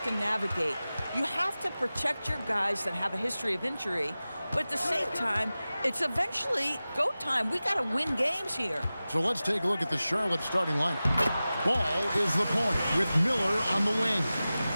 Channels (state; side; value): inverted; both; correlation -0.96